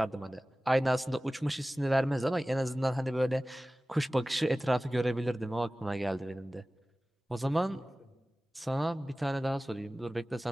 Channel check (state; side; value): normal; both; correlation 0.97